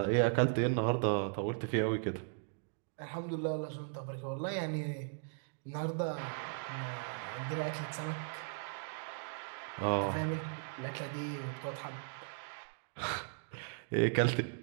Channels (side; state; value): left; silent; digital silence